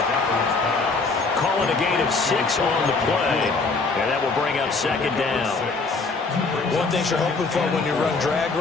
Calling a gain of 6 on the play. And that will bring up 2nd down. One thing you're hoping for when you run drag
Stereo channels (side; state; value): right; quieter; 4.0 dB